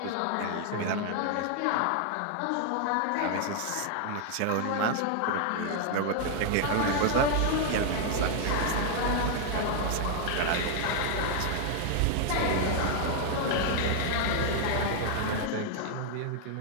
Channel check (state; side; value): different; both; correlation 0.00